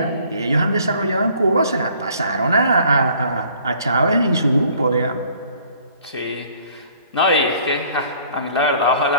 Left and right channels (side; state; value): both; inverted; correlation -0.57